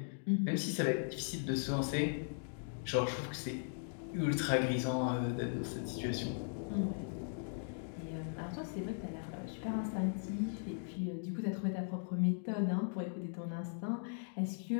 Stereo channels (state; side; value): silent; right; digital silence